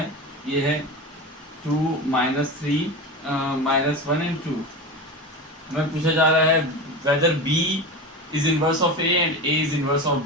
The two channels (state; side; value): normal; both; correlation 0.26